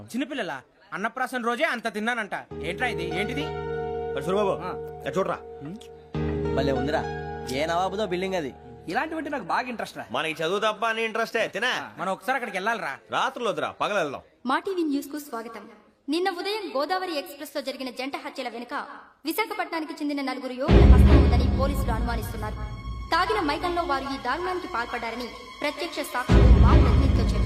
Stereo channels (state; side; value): identical; both; correlation 1.00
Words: చిన్నపిల్లల అన్నప్రాసన రోజే అంత తిన్నానంట. ఏంట్రా ఇది? ఏంటిది? సూరిబాబు చూడరా, భలే ఉందిరా. ఏ నవాబుదో బిల్డింగ్ అది. ఇలాంటివంటే నాకు బాగా ఇంట్రెస్ట్ రా. మనకి చదువు తప్ప అని ఇంట్రెస్టే తినా. మనం ఒకసారి అక్కడికి వెళ్ళాలిరా. రాత్రులు వద్దురా, పగలు వెళ్దాం. మా టీవీ న్యూస్ కు స్వాగతం. నిన్న ఉదయం గోదావరి ఎక్స్ప్రెస్ లో జరిగిన జంట హత్యల వెనుక విశాఖపట్నానికి చెందిన 4 యువకుల హస్తం ఉందని పోలీసులు అనుమానిస్తున్నారు. తాగిన మైకంలో వారు ఈ దారుణానికి పాల్పడ్డారని ప్రత్యక్ష సాక్షులు మా ప్రతినిధితో